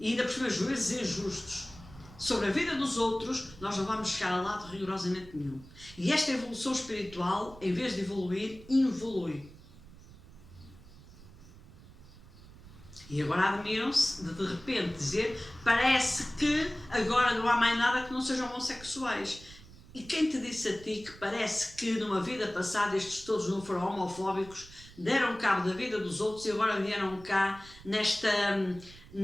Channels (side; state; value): right; noise; rumble, 20 dB below the sound